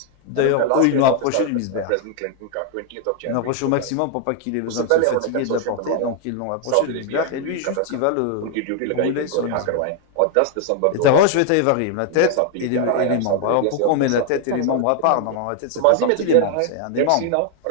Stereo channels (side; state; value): both; different; correlation 0.00